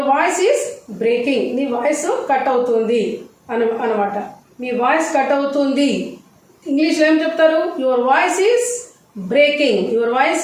voice is breaking. నీ వాయిస్ కట్ అవుతుంది అనమాట. మీ వాయిస్ కట్ అవుతుంది. ఇంగ్లీష్లో ఏం చెప్తారు? Your voice is breaking. Your voice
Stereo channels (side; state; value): both; identical; correlation 1.00